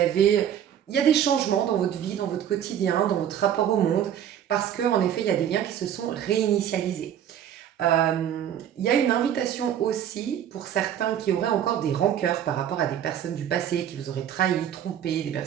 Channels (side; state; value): left; quieter; 9.9 dB